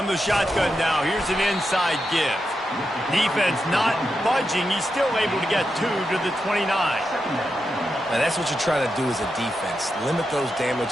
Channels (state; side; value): normal; both; correlation 0.87